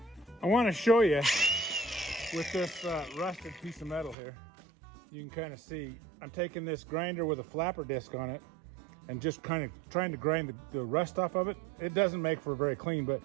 I want to show you with this rusted piece of metal here. You can kind of see I'm taking this grinder with a flapper disc on it and just kind of trying to grind the rust off of it. It doesn't make for very clean, but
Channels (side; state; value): left; drops out; at 4.2 s